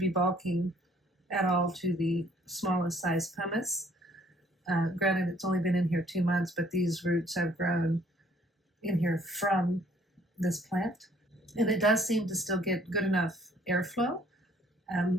bulking at all to the smallest size pumice. Granted, it's only been in here 2 months, but these roots have grown in here from this plant, and it does seem to still get good enough airflow.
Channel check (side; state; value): both; normal; correlation 0.61